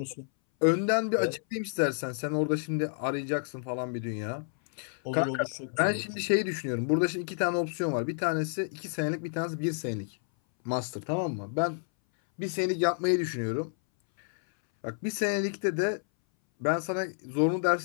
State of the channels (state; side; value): silent; right; 58 dB below the other